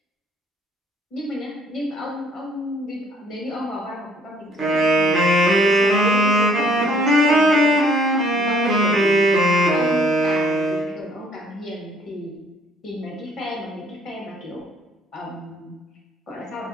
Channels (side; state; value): both; normal; correlation 0.61